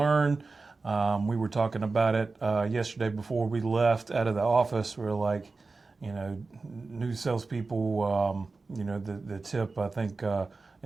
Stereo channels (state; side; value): quieter; left; 3.9 dB